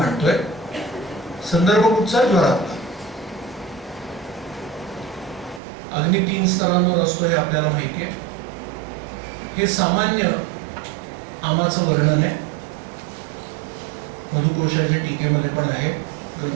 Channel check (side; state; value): left; drops out; at 5.6 s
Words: संदर्भ कुठचा? ज्वरातला. अग्नी 3 स्तरांवर असतो हे आपल्याला माहिती आहे. हे सामान्य आमाचं वर्णन आहे. मधुकोशाच्या टीकेमध्ये पण आहे,